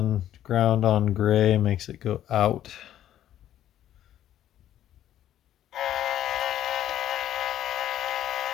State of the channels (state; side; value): quieter; right; 11.8 dB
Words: ground on gray makes it go out.